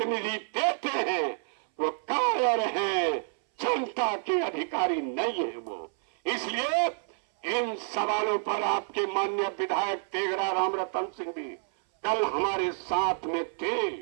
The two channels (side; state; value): left; silent; 59 dB below the other